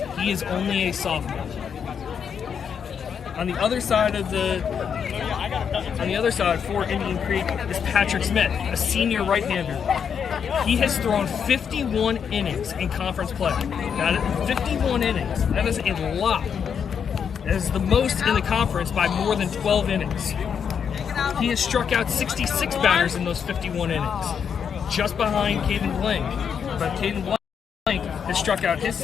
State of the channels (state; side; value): quieter; right; 7.3 dB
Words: he is only a sophomore. On the other side for Indian Creek is Patrick Smith, a senior right-hander. He has thrown 51 innings in conference play. That is 51 innings. That is a lot. That is the most in the conference by more than 12 innings. He has struck out 66 batters in those 51 innings, just behind Caden Blank. But Caden Blank has struck out his